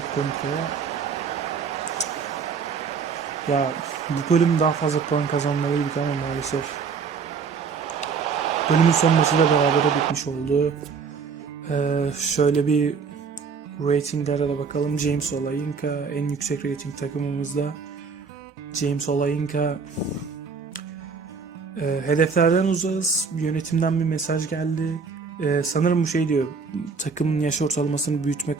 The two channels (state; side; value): quieter; left; 5.4 dB